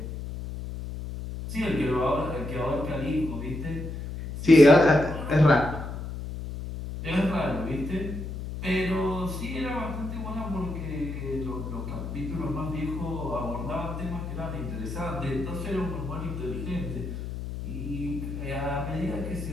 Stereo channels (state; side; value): noise; left; hum, 7 dB below the sound